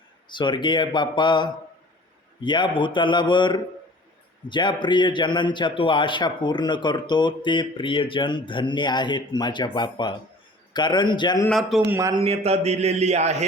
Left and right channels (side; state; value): both; normal; correlation 0.47